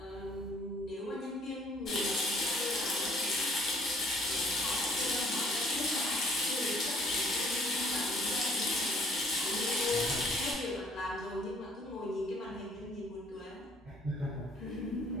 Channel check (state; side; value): normal; both; correlation 0.61